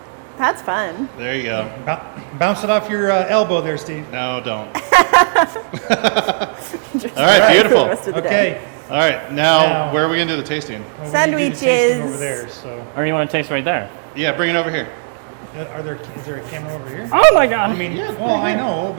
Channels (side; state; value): left; silent; digital silence